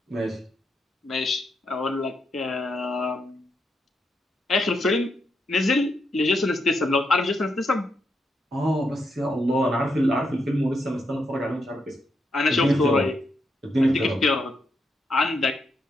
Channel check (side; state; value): both; normal; correlation 0.81